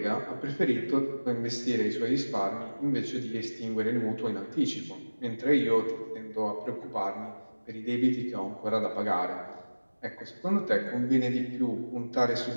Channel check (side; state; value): both; inverted; correlation -1.00